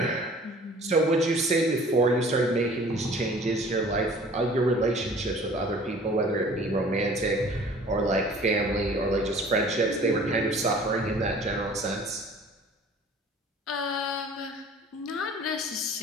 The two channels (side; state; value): both; normal; correlation 0.49